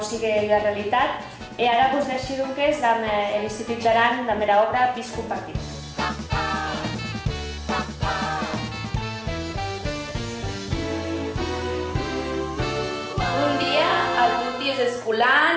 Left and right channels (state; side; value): identical; both; correlation 1.00